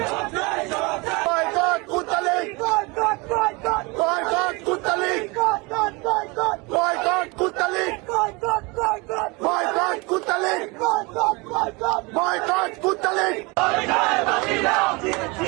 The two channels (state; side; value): quieter; left; 26.9 dB